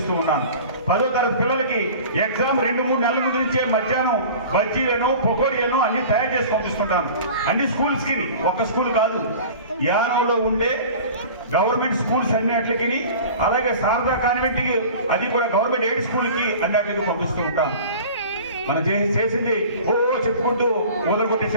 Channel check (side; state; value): both; inverted; correlation -0.40